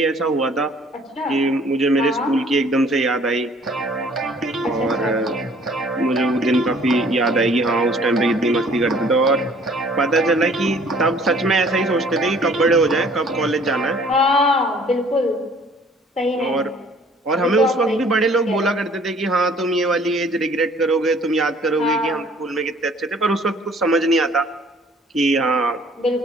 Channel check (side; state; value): both; normal; correlation 0.56